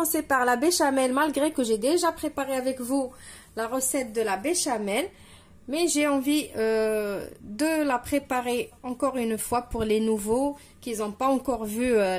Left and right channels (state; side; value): identical; both; correlation 1.00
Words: par la béchamel, malgré que j'ai déjà préparé avec vous la recette de la béchamel. Mais j'ai envie de la préparer encore une fois pour les nouveaux qui n'ont pas encore vu